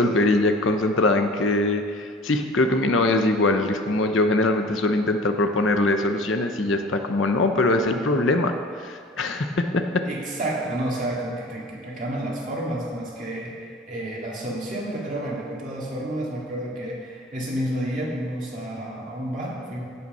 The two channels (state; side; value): normal; both; correlation 0.43